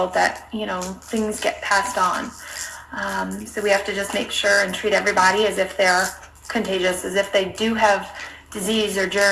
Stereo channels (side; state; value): both; identical; correlation 1.00